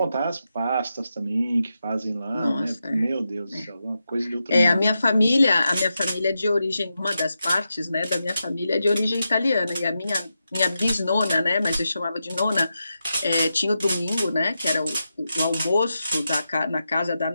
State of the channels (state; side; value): inverted; both; correlation -0.88